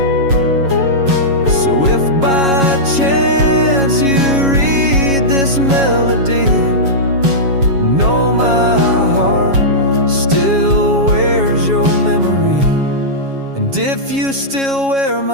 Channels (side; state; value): left; late; 7.3 ms